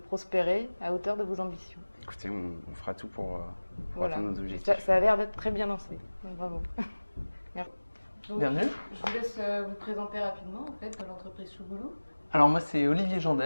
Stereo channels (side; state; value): both; inverted; correlation -1.00